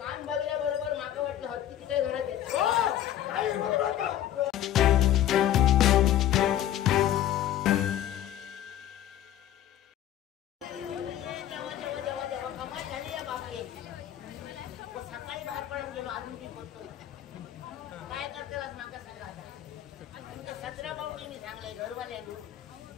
कान बघल्या बरोबर माका वाटलं हत्तीची काय घरात येत. सकाळी बाहेर पडून गेलो अजून मी बोलतोय काय करतेलाच माका सांगा आता 17 पाऊटी मी सांगलंय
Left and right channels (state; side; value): quieter; right; 11.6 dB